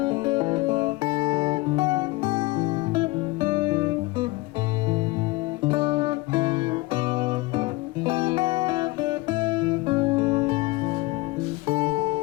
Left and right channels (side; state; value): right; quieter; 21.4 dB